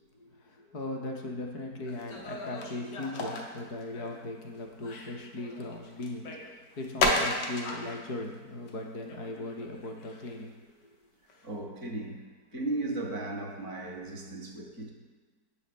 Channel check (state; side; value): late; right; 4.5 ms